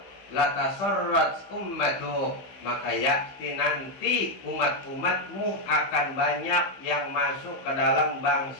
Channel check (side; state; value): right; late; 15 ms